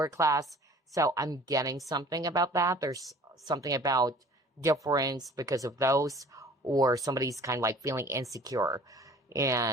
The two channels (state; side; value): normal; both; correlation 0.49